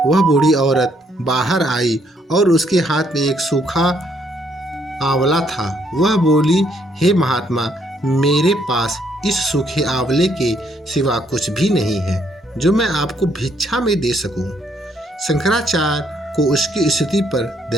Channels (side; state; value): both; normal; correlation 0.70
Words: वह बूढ़ी औरत बाहर आई और उसके हाथ में एक सूखा आंवला था। वह बोली, हे महात्मा, मेरे पास इस सूखे आंवले के सिवा कुछ भी नहीं है जो मैं आपको भिक्षा में दे सकूं। शंकराचार्य को उसकी स्थिति पर